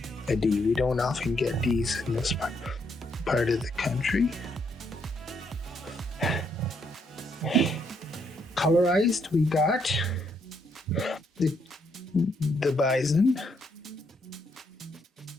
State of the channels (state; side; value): normal; both; correlation 0.74